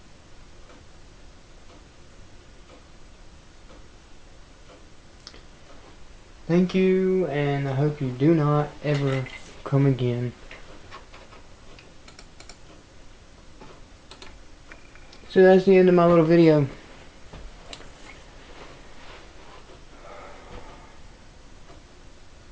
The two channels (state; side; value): identical; both; correlation 1.00